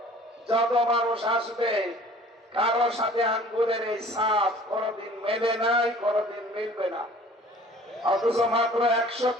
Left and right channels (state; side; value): normal; both; correlation 0.49